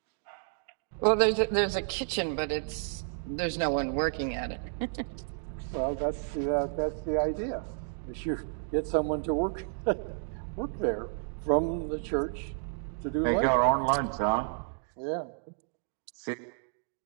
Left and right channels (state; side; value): silent; left; digital silence